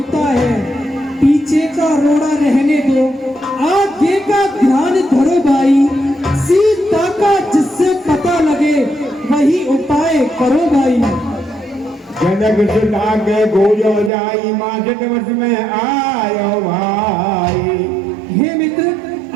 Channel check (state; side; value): drops out; left; at 14.1 s